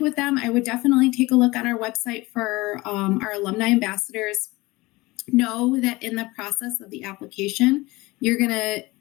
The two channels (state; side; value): quieter; right; 21.4 dB